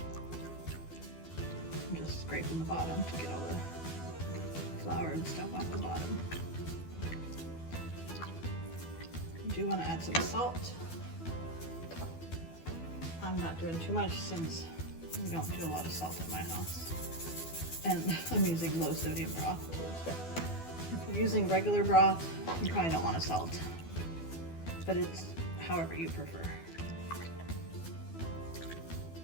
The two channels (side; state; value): right; late; 12 ms